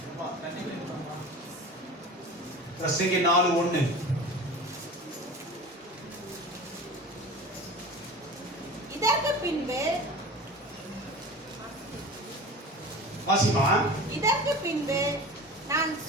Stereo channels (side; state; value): both; normal; correlation 0.36